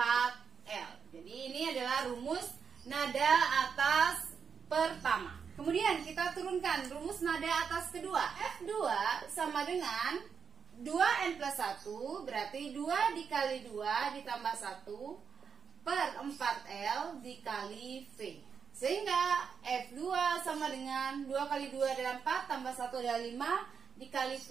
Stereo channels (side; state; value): left; quieter; 6.3 dB